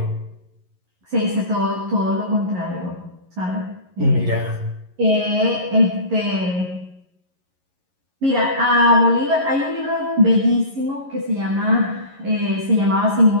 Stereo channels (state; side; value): late; left; 11 ms